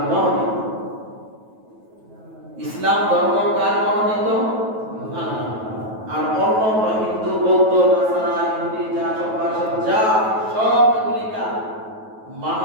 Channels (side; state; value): left; late; 9.2 ms